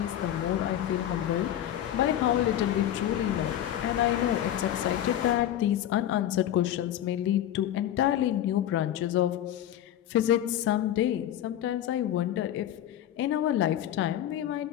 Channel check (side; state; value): right; quieter; 11.7 dB